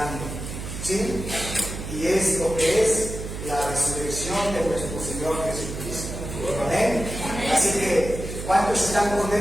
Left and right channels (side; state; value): right; noise; hum, 8 dB below the sound